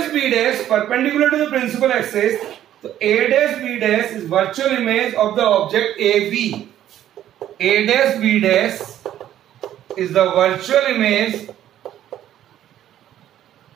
B dash perpendicular to the principal axis. So A dash B dash is virtual image of the object AB. A dash B dash is the virtual image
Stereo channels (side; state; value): left; quieter; 11.7 dB